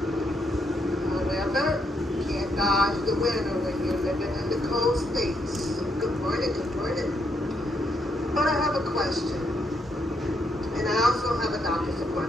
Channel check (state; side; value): normal; both; correlation 0.76